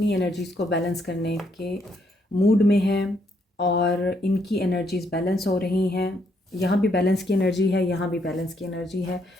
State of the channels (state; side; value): normal; both; correlation 0.73